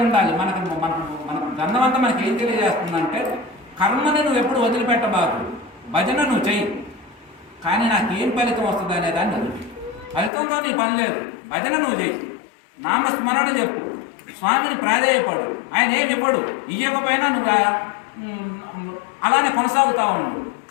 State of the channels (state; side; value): drops out; right; at 10.3 s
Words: ఉండాలి. మన గంధం అంతా మనకి ఏం తెలియజేస్తుందంటే, కర్మని నువ్వు ఎప్పుడు వదిలిపెట్టబాకు, భజన నువ్వు చెయ్యి. కానీ నాకేం ఫలితం వస్తుంది అనేదాన్ని వదిలి, ఫలితంతో నీ పని లేదు. భజన నువ్వు చెయ్యి, నామస్మరణ చెప్పు, స్వామిని ప్రాధేయపడు. ఆయన ఏమి ఇవ్వడు, ఇవ్వకపోయినా నువ్వు అలానే కొనసాగుతూ ఉండు.